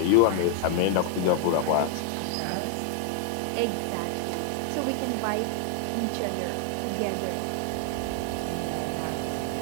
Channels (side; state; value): both; different; correlation 0.00